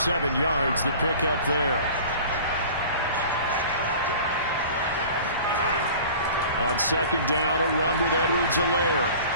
yards the pick up there. On second down, a run with Edwards-Helaire.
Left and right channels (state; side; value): inverted; both; correlation -0.42